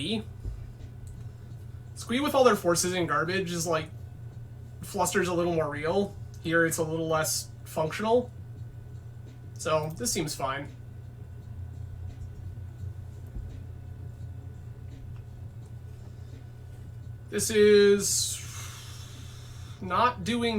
Squee with all their forces and garbage is like, Fluster's a little more real. Here it's a little less functional. So this seems fine. This is not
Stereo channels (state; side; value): identical; both; correlation 1.00